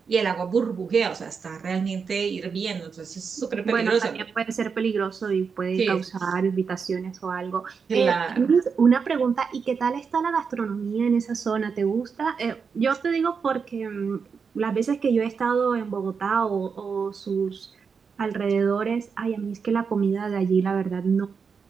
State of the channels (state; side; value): quieter; left; 5.8 dB